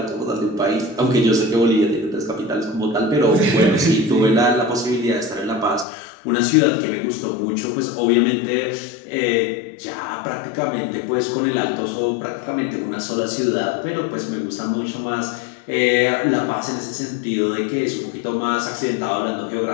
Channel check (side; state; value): right; drops out; at 5.9 s